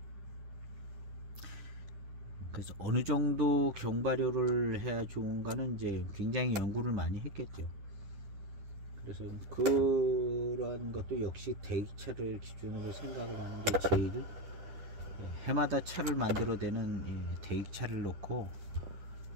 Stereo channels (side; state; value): left; late; 10 ms